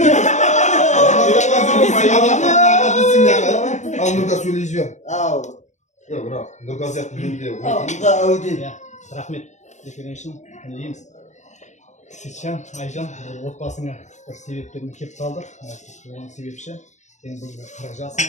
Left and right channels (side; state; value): right; late; 0.34 ms